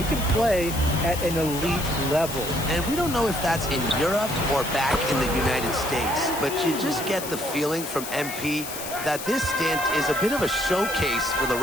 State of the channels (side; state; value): left; noise; hiss, 9 dB below the sound